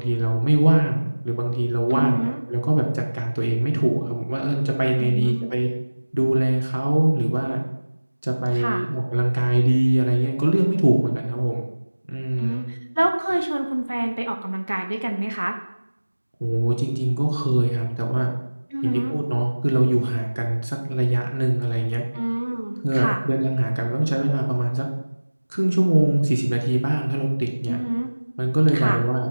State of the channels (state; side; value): inverted; both; correlation -1.00